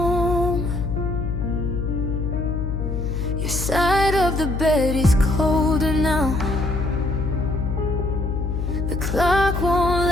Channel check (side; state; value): left; noise; hum, 2 dB below the sound